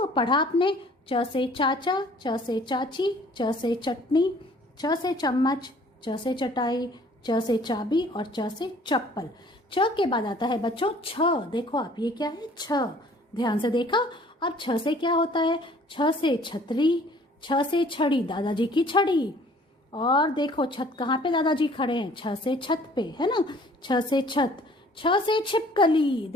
पढ़ा आपने च से चाचा, च से चाची, च से चटनी, च से चम्मच, च से चटाई, च से चाबी और च से चप्पल। च के बाद आता है बच्चों छ। देखो आप, ये क्या है? छ। ध्यान से देखा। अब छ से क्या होता है? छ से छतरी, छ से छड़ी, दादाजी की छड़ी। और देखो छत कहाँ पे दादाजी खड़े हैं? छ से छत पे, है ना? छ से छत। छ से छिपकली,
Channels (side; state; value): both; normal; correlation 0.55